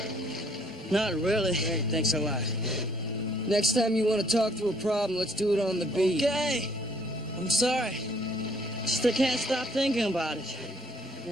not really. Hey, thanks a lot. Next time you want to talk through a problem, let's do it on the beat. Okay, I'm sorry. Just I can't stop thinking about it.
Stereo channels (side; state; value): both; normal; correlation 0.64